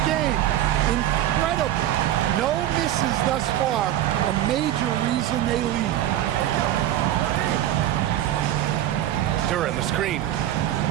game. Incredible. No misses thus far. A major reason they lead. Duran, the screen.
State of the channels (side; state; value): left; quieter; 12.6 dB